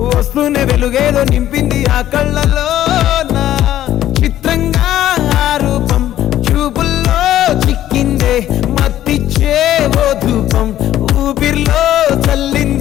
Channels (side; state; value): right; quieter; 12.7 dB